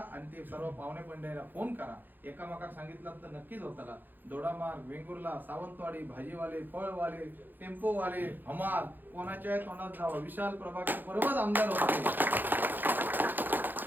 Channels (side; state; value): left; late; 0.089 ms